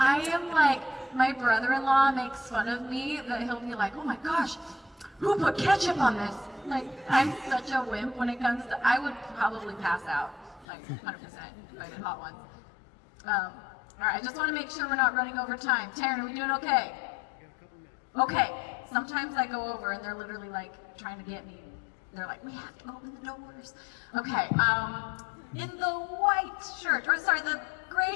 am like, my brother-in-law makes fun of me that he'll be like, oh my gosh, who put ketchup on this? Like, I'm such a wimp when it comes to, I would probably pass out, like 100% if I did Hot Ones. All right, I just want to make sure we're not running over time. Taryn, are we doing okay? Okay, sometimes I go over and they're literally like trying to get me. They're like, we have to open the doors. Okay, in the white shirt, or sorry, the gray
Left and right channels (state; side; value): drops out; right; at 10.7 s